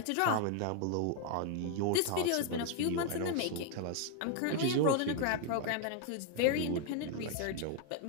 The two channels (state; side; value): different; both; correlation 0.00